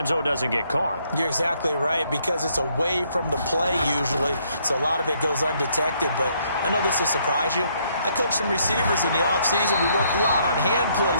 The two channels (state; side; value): inverted; both; correlation -0.70